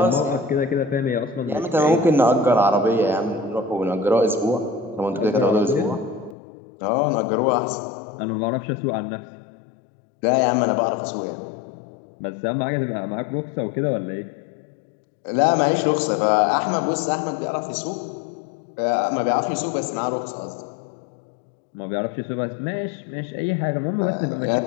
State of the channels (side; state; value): right; drops out; at 6.4 s